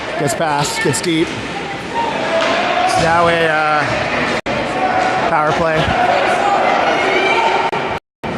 Gets past, gets deep. It's now a power play.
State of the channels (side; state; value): both; identical; correlation 1.00